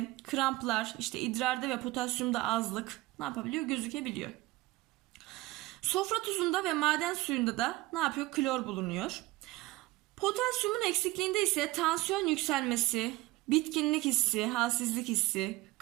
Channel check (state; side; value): quieter; left; 19.5 dB